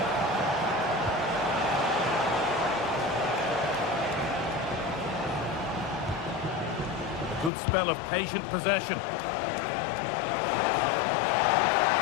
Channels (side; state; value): right; drops out; at 7.5 s